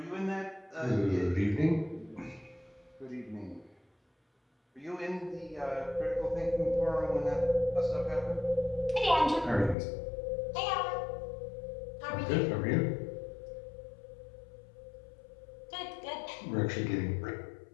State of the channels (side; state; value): right; drops out; at 9.8 s